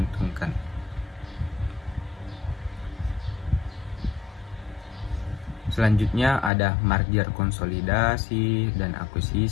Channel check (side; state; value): right; drops out; at 6.5 s